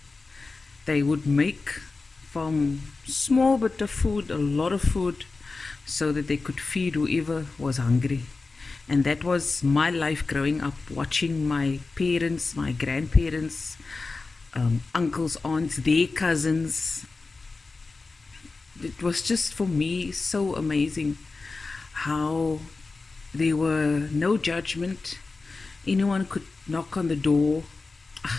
They would make from small bit of food a lot of food so that they could feed whoever was hungry. And that was my life growing up, watching my parents, my grandparents, uncles, aunts, their cousins. It was just for me so amazing how there were no judgment. Anyone could knock on the door.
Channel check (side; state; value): right; quieter; 3.9 dB